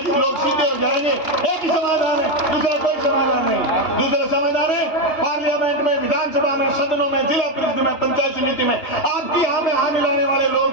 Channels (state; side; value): late; right; 2.8 ms